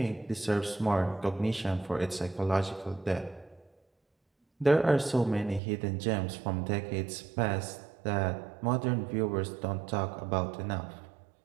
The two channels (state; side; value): drops out; left; at 5.6 s